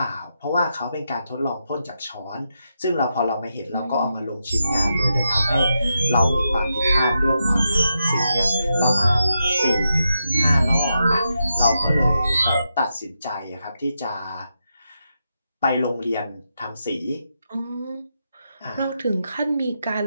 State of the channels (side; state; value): both; inverted; correlation -0.85